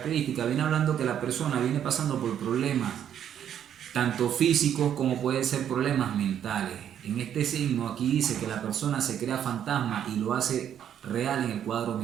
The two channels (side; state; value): left; quieter; 9.6 dB